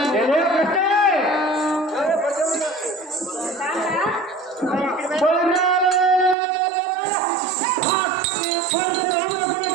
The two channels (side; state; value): left; drops out; at 6.4 s